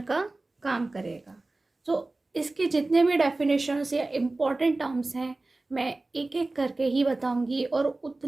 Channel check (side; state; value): left; quieter; 3.1 dB